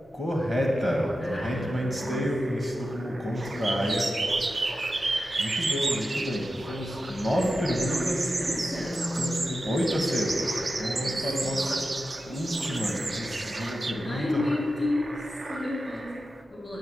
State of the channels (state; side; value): normal; both; correlation 0.92